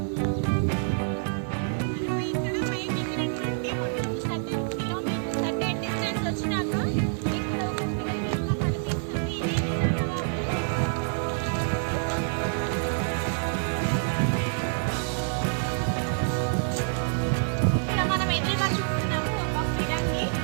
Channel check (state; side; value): silent; left; digital silence